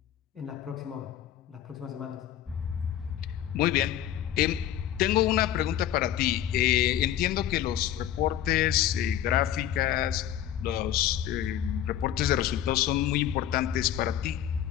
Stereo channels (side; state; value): right; quieter; 11.3 dB